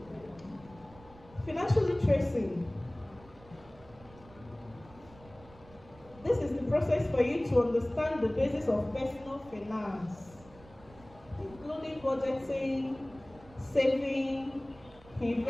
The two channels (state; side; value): noise; right; rumble, 23 dB below the sound